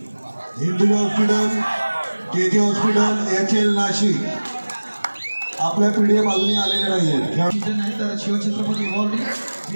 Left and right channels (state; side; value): inverted; both; correlation -1.00